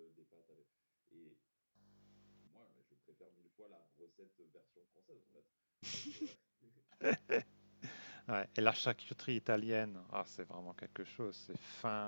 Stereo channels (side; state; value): both; inverted; correlation -1.00